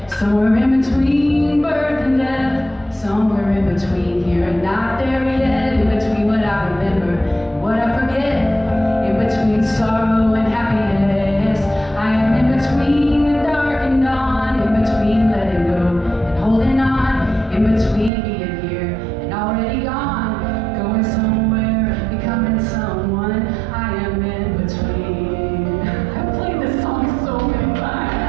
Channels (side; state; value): left; drops out; at 18.1 s